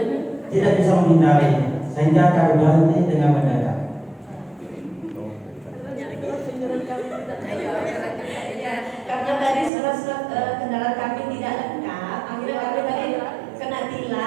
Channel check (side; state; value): left; drops out; at 9.7 s